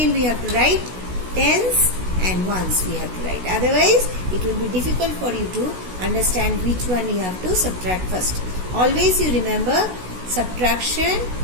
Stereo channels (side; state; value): left; late; 16 ms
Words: we have to write tens and ones we have to write. Otherwise it will be difficult for you to understand which one you have to subtract first. Always you remember, subtraction